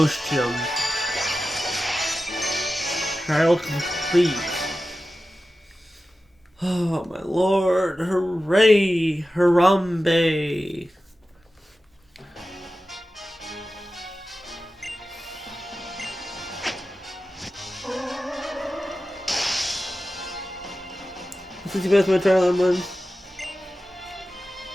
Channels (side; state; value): both; normal; correlation 0.94